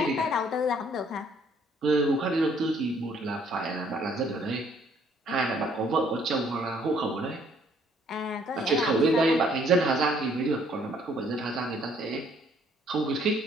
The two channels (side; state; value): both; normal; correlation 0.64